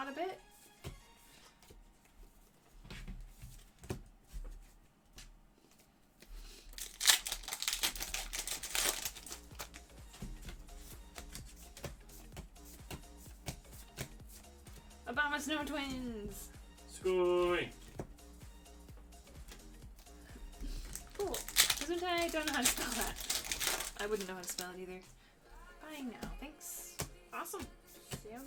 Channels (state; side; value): identical; both; correlation 1.00